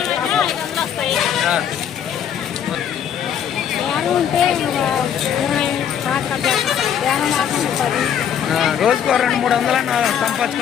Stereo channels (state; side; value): quieter; right; 8.9 dB